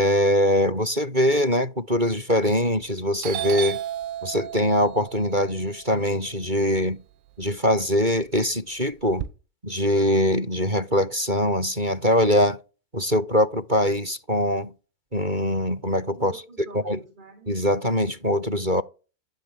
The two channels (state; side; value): late; left; 2.3 ms